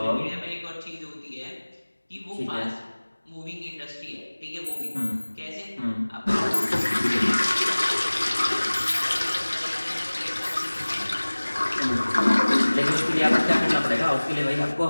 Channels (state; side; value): inverted; both; correlation -1.00